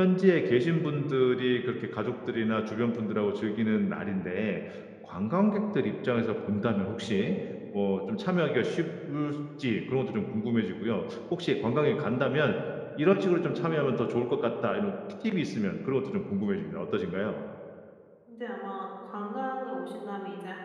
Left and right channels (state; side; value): identical; both; correlation 1.00